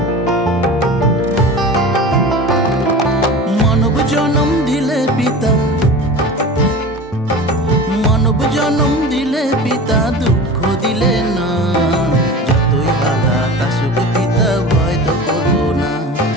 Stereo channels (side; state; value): both; normal; correlation 0.34